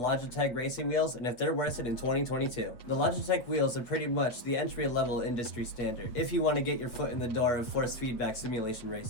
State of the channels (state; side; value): late; right; 8.0 ms